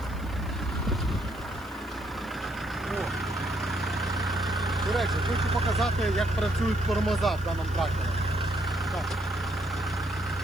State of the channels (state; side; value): noise; left; hiss, 23 dB below the sound